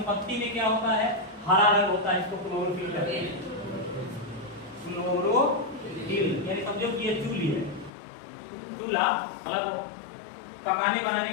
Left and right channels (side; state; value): right; drops out; at 7.9 s